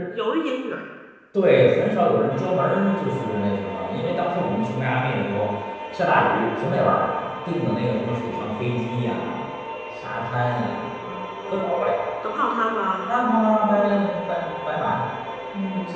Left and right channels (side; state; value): both; identical; correlation 1.00